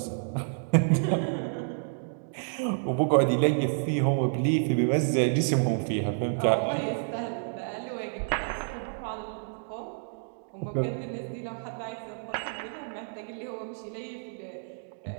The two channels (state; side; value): silent; left; digital silence